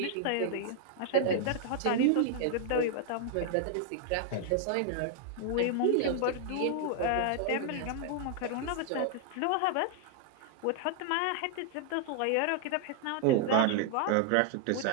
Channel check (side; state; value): both; different; correlation 0.00